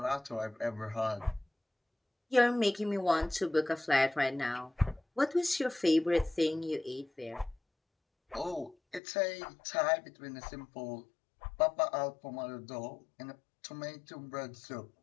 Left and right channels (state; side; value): drops out; right; at 9.0 s